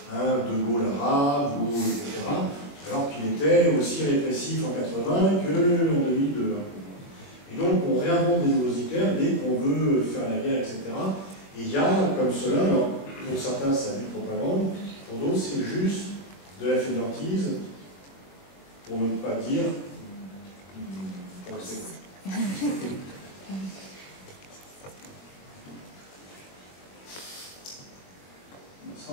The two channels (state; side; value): late; right; 21 ms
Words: un De Gaulle arabe, etc. Alors qu'il était aussi répressif en 80 qu'en 2002. Et donc, on réinvente des nouveaux Hitler dès qu'on veut faire la guerre, etc. Et il y a comme cela, alors, pour certains, ça a du propagande, pour d'autres, c'est juste de la fainéantise, pour ne pas dire pour rester.